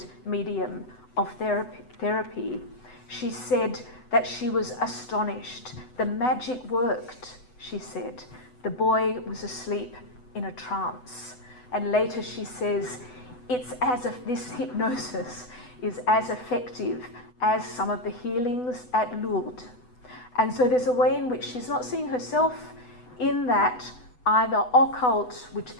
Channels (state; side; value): late; right; 8.0 ms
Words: medium of therapy, she said that she was astonished. The magic worked, she said. The boy was asleep in a trance. And later she says, it's as if this hypnosis is as effective as some of the healings at Lourdes. And so there's a way in which she's not seeing herself in that either occult, which